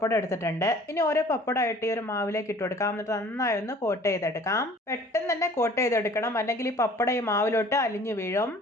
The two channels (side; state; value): both; normal; correlation 0.50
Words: എടുത്തിട്ടുണ്ട്. ഇനി ഓരോ പപ്പടമായിട്ട് ഈ ഒരു മാവിലേക്ക് ഇട്ട് കൊടുക്കാം. എന്നിട്ട് നന്നായി ഒന്ന് കോട്ട് ചെയ്തെടുക്കാം. പെട്ടെന്ന് തന്നെ കോട്ട് ചെയ്തെടുക്കണം, അല്ലെങ്കിൽ ഈ പപ്പടം ഈ മാവിലോട്ട് അലിഞ്ഞു വീഴും.